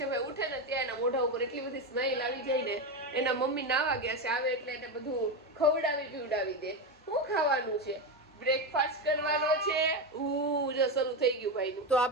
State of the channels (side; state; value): both; normal; correlation 0.14